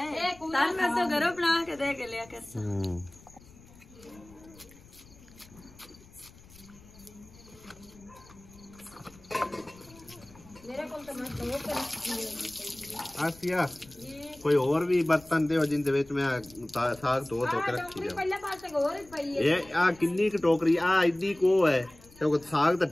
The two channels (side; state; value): left; noise; rumble, 23 dB below the sound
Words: तार मैं तो घरों बना के दे के लिया कर। मेरे को तो मैं धो के रखी आसिया कोई और भी बर्तन दे जिंदे विच मैं साग धो के रखी है। पहले पासे और ही पई है। ये आ किन्नी क टोकरी आ इड्डी को है क्योंकि साग तो